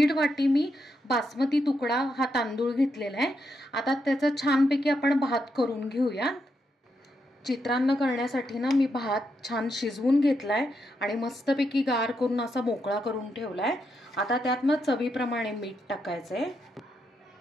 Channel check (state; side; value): normal; both; correlation 0.82